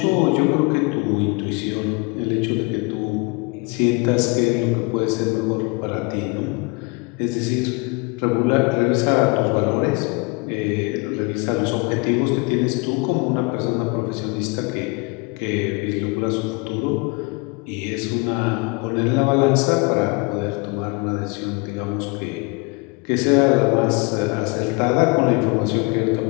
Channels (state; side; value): quieter; right; 29.3 dB